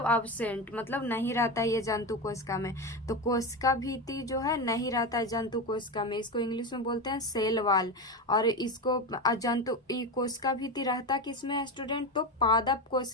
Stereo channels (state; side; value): normal; both; correlation 0.18